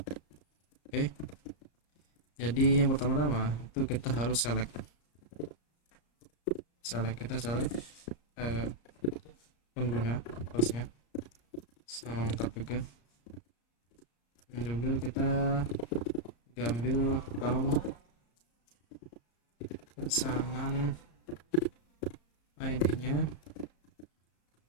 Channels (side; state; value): right; late; 34 ms